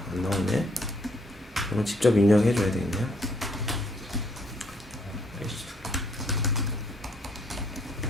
이거 직접 입력해 줘야 되겠네요.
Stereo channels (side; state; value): both; normal; correlation 0.68